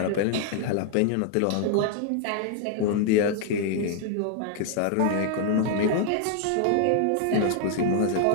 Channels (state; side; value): different; both; correlation 0.00